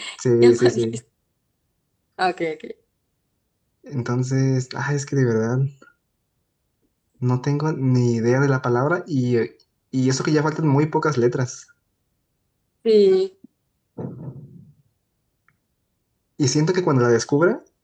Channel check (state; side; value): identical; both; correlation 1.00